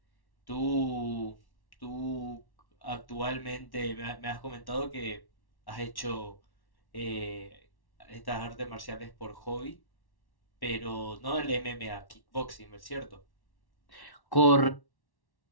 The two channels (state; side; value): late; right; 1.1 ms